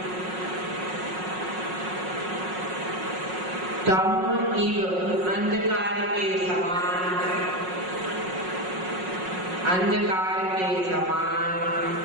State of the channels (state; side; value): late; left; 5.5 ms